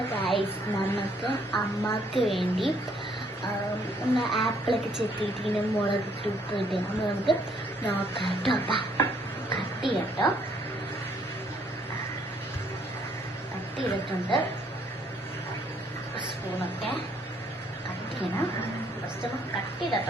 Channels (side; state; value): both; normal; correlation 0.66